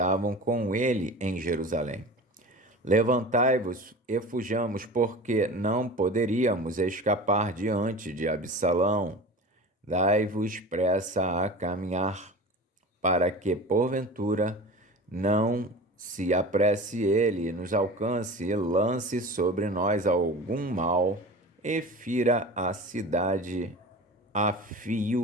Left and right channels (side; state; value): both; normal; correlation 0.35